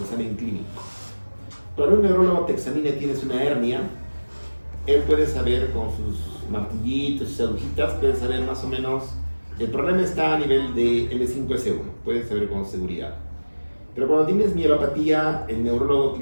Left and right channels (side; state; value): both; inverted; correlation -1.00